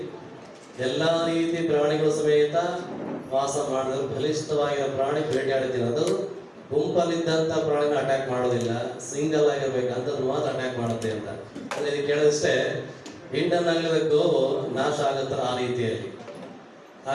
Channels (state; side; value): identical; both; correlation 1.00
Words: ಎಲ್ಲಾ ರೀತಿ ಪ್ರಾಣಿಗಳು ಸಮೇತ ವಾಸ ಮಾಡಿದ್ರು, ಬಲಿಷ್ಠವಾಗಿರೋ ಪ್ರಾಣಿ ಬೇಟೆಯಾಡ್ತೀನಿ, ಅದು ಗುಂಪಲ್ಲಿದ್ದಂತ ಪ್ರಾಣಿನ ಅಟ್ಯಾಕ್ ಮಾಡೋದಿಲ್ಲ, ಸಿಂಗಲ್ ಆಗಿರ್ಬೇಕಂತದ್ದು ಮಾತ್ರ ಅಟ್ಯಾಕ್ ಮಾಡುತ್ತೆ ಅಂತ. ಅದಕ್ಕೆ ಕೇಳಿದಷ್ಟೇ ಇಂಡನ್ ಆಗಲಿದ ಗೋವು ನಾಶ ಆಗುತ್ತ ಆ ರೀತಿಯಲ್ಲಿ.